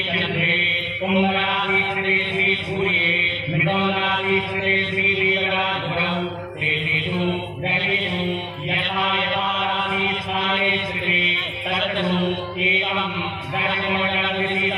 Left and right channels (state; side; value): identical; both; correlation 1.00